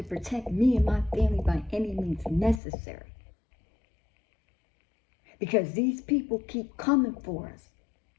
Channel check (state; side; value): drops out; right; at 2.6 s